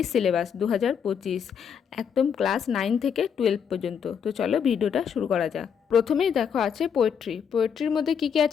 সিলেবাস 2025, একদম ক্লাস 9 থেকে 12 পর্যন্ত। তো চলো ভিডিওটা শুরু করা যাক। প্রথমেই দেখো আছে পোয়েট্রির মধ্যে কী কী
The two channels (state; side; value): quieter; right; 7.4 dB